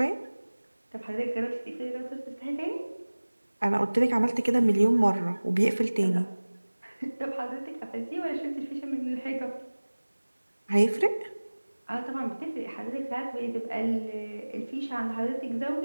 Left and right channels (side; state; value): both; inverted; correlation -1.00